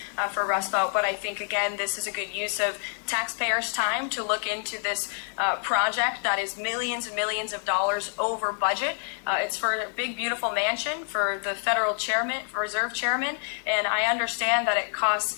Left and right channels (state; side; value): silent; right; 59 dB below the other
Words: for Rumsfeld, but I think, again, this is a good use of taxpayers' time to look into this project that is millions and millions of dollars over budget. It's for a big, beautiful mansion for the federal chairman, reserve chairman, and I understand that it